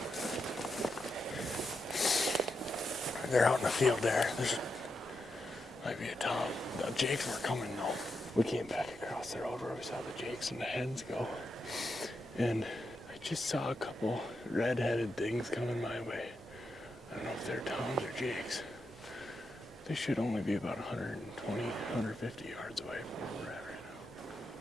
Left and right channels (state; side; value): normal; both; correlation 0.85